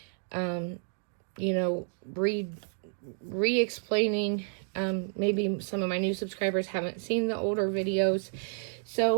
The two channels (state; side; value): silent; left; digital silence